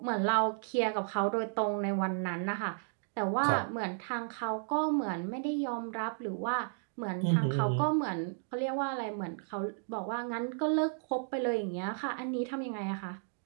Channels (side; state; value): left; silent; digital silence